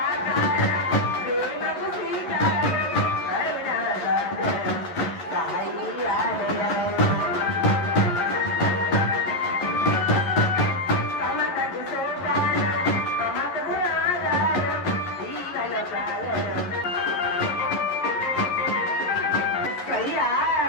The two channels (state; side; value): late; right; 11 ms